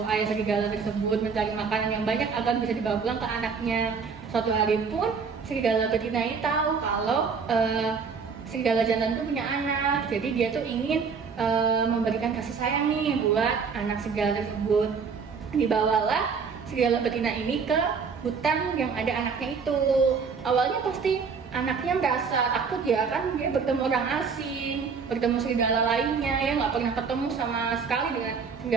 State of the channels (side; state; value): left; quieter; 5.6 dB